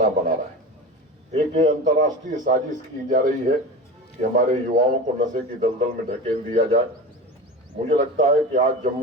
बना रहा है। एक अंतर्राष्ट्रीय साजिश की जा रही है कि हमारे युवाओं को नशे की दलदल में ढकेल दिया जाए। मुझे लगता है कि आज जम्मू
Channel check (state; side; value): normal; both; correlation 0.29